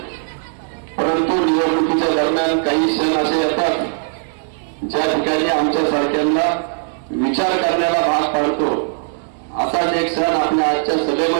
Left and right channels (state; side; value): silent; left; digital silence